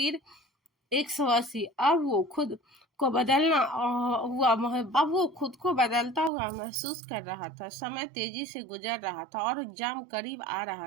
180। अब वो खुद को बदलता हुआ महसूस कर रहा था। समय तेजी से गुजर रहा था और एग्जाम करीब आ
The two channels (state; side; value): drops out; left; at 6.3 s